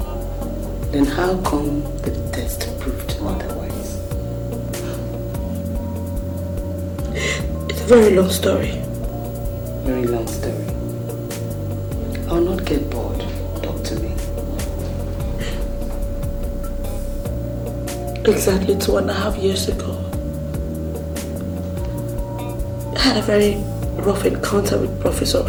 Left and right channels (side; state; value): both; identical; correlation 1.00